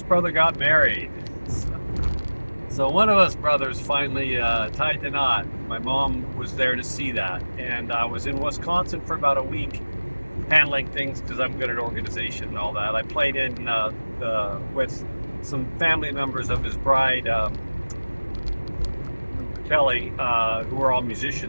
brother got married. So one of us brothers finally tied the knot. My mom was there to see that. And I was in Wisconsin for about a week handling things because I'm good at organization and all that. I played in with some family members of his bride, Kelly, who were all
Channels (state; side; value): inverted; both; correlation -1.00